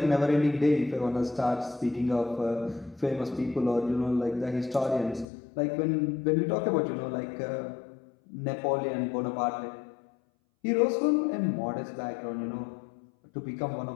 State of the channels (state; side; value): drops out; right; at 5.2 s